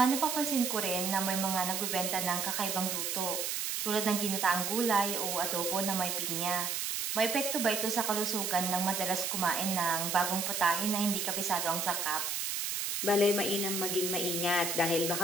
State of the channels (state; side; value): noise; right; hiss, 1 dB below the sound